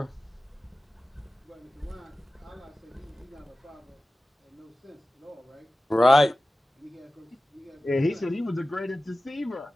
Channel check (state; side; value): normal; both; correlation 0.96